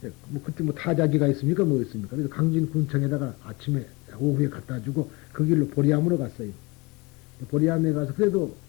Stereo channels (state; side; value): quieter; right; 25.7 dB